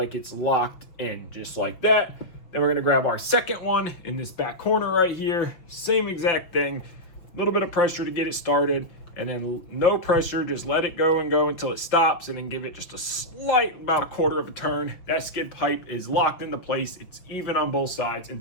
it's locked in, just like that. Then we're gonna grab our second one in this back corner right here. Same exact thing, a little bit of pressure to get it started, and then no pressure, just let it go and go until it stops, and then give it just a slight, about a quarter of a turn. That skid pipe is locked into place. It's even on both sides, and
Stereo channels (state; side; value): late; right; 6.2 ms